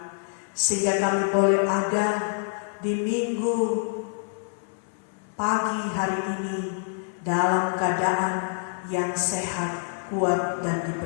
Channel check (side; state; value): right; silent; 60 dB below the other